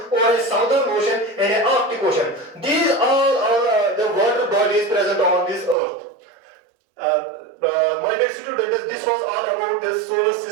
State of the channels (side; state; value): left; drops out; at 5.8 s